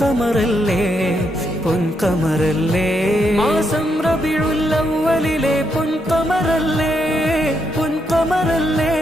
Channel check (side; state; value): both; normal; correlation 0.78